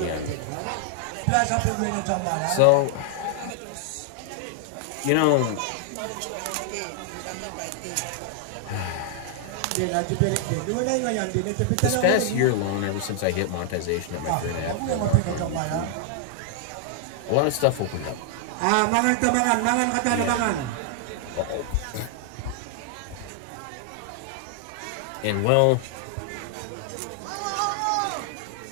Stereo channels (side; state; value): both; different; correlation 0.00